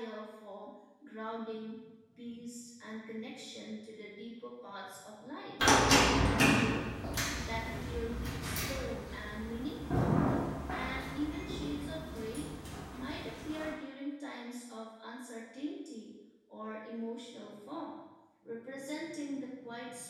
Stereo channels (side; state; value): both; identical; correlation 1.00